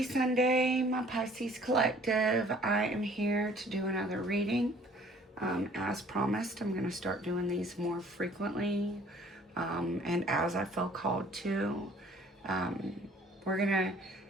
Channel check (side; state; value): both; normal; correlation 0.55